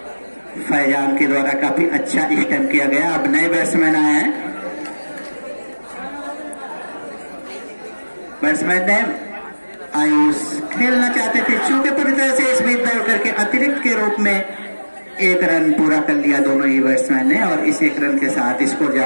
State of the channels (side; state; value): both; inverted; correlation -1.00